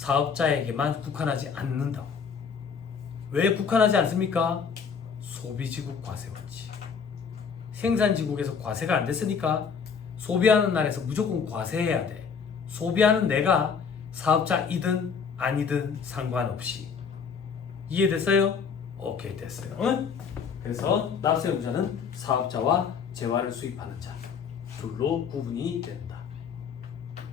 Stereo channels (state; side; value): quieter; right; 6.2 dB